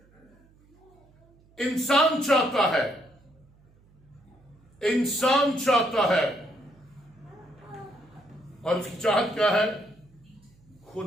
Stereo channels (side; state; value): right; noise; hum, 30 dB below the sound